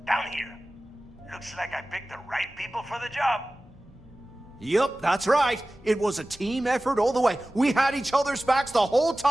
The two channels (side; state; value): both; normal; correlation 0.97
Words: down here. Looks like I picked the right people for the job. Yup, that's right. It was a team effort all the way. We had each other's backs the whole